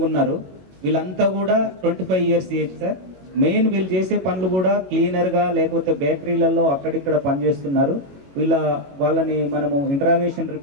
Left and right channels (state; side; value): late; left; 22 ms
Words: ఉన్నారు. వీళ్ళంతా కూడా 25 ఇయర్స్ ఏజ్ సార్. మెయిన్ వీళ్ళు చేసే పనులు కూడా క్లీనర్గా లేకపోతే బేకరీలలో అక్కడిక్కడ పనిచేస్తున్నారు. వాళ్ళని మనము ఇంటరాగేషన్